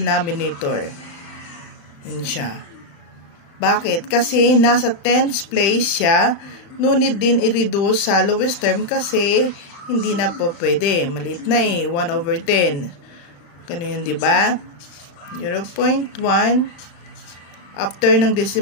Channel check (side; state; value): right; late; 35 ms